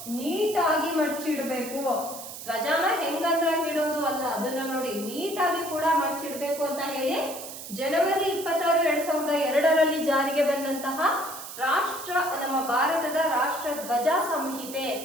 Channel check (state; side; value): noise; right; hiss, 11 dB below the sound